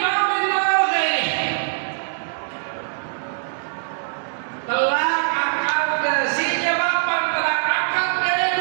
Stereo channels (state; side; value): silent; left; digital silence